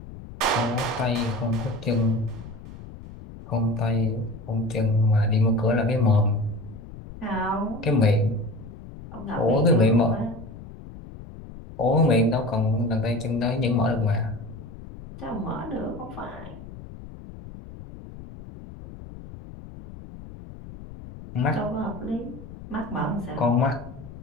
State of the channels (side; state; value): left; noise; rumble, 15 dB below the sound